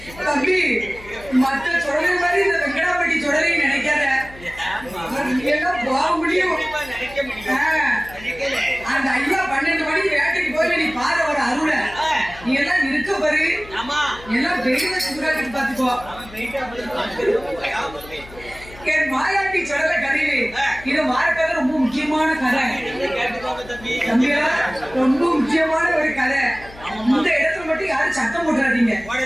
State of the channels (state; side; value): noise; left; hum, 19 dB below the sound